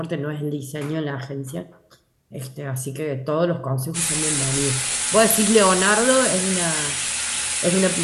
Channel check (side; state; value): both; identical; correlation 1.00